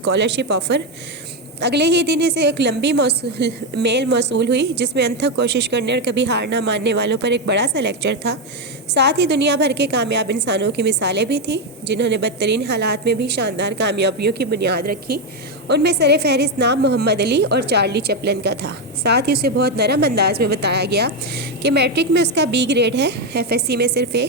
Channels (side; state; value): both; normal; correlation 0.07